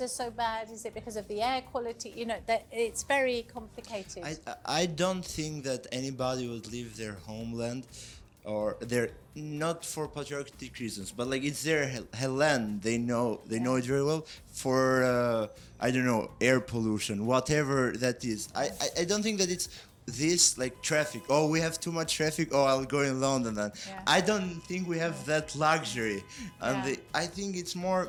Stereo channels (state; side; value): identical; both; correlation 1.00